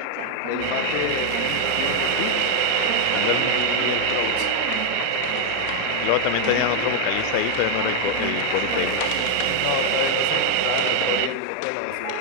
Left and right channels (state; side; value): different; both; correlation 0.00